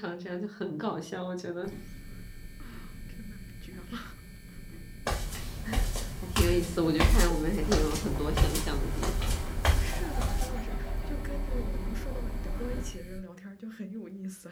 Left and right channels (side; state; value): both; identical; correlation 1.00